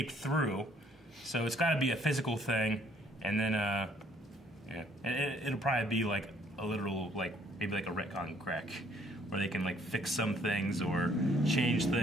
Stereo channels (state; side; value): normal; both; correlation 0.64